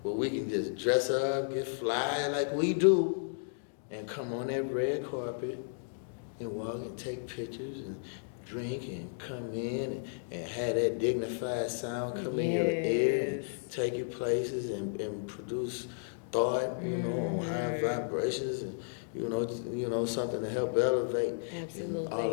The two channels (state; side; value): silent; right; digital silence